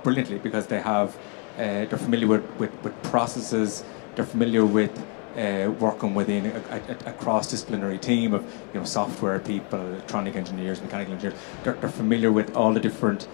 brilliantly because they're familiar with processes, they're familiar with working within a cross-disciplinary team of software people, electronic engineers, mechanical engineers. They're familiar with all the different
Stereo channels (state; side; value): quieter; right; 39.7 dB